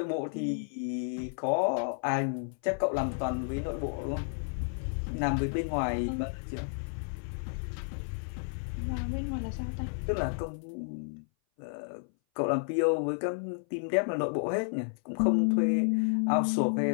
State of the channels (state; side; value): silent; right; 57 dB below the other